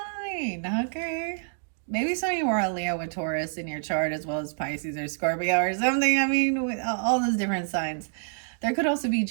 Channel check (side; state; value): left; silent; digital silence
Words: Okay. Maybe some of you are a Leo with Taurus in your chart, as well as Pisces or Scorpio or something. I mean, with all those different signs. There could also be